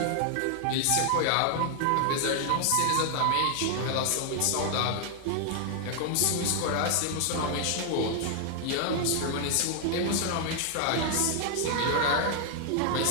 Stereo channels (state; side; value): different; both; correlation 0.00